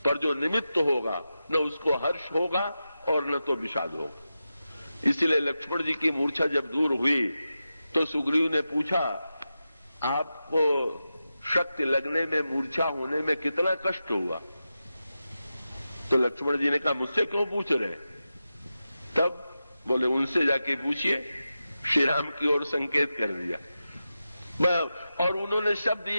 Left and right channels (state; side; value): inverted; both; correlation -0.91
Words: पर जो निमित्त होगा न उसको हर्ष होगा और न तो विषाद होगा। इसलिए लक्ष्मण जी की मूर्छा जब दूर हुई तो सुग्रीव ने पूछा, आपको शक्ति लगने में, मूर्छा होने में कितना कष्ट हुआ? तो लक्ष्मण जी ने कहा, मुझसे क्यों पूछ रहे? तब बोले, उनसे जाके पूछिए। श्री राम की ओर संकेत कर दिया और उन्होंने शब्द